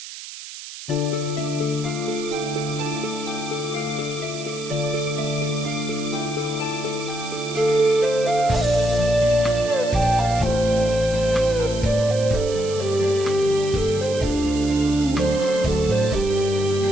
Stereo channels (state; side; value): noise; right; hiss, 12 dB below the sound